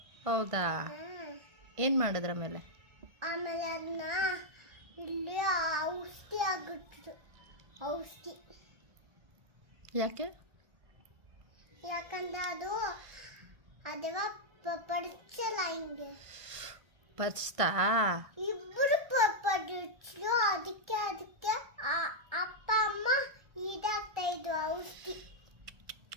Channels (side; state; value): left; late; 1.5 ms